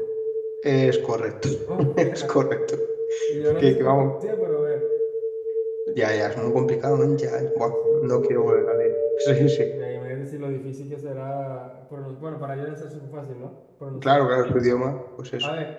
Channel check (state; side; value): identical; both; correlation 1.00